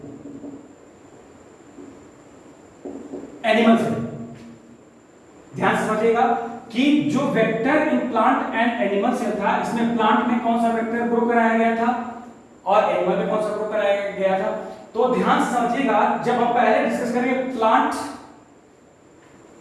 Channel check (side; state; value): both; identical; correlation 1.00